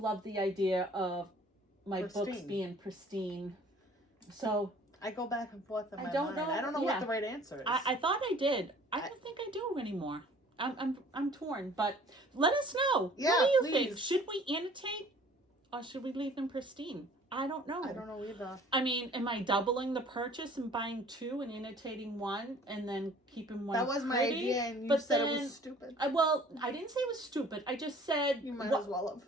the idea of my books being pristine. So I go back and forth in my mind. I don't know what the right answer is. I thought I did. I don't think I do anymore. I'm torn. But let us know. Yeah, what do you please. think? Should we annotate, or should we leave them pristine? I don't know. I don't know either. I mean, am I doubling the purchase and buying 2 and annotating 1 and then keeping 1? That was my idea, and you said it was stupid. I didn't say it was stupid. I just said you might as well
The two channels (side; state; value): both; normal; correlation 0.52